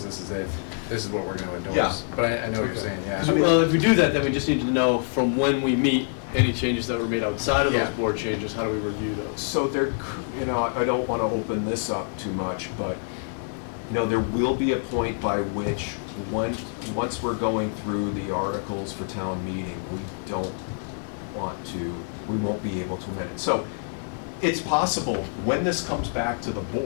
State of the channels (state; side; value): silent; right; 59 dB below the other